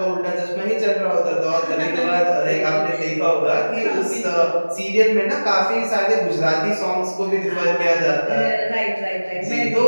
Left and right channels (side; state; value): both; inverted; correlation -1.00